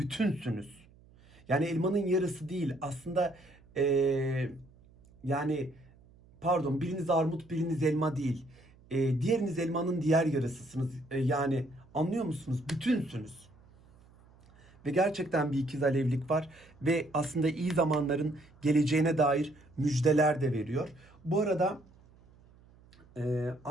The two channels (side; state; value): right; noise; hum, 27 dB below the sound